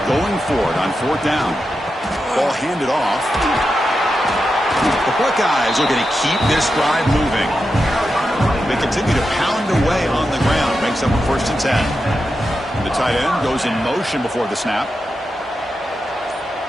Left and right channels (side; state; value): both; normal; correlation 0.89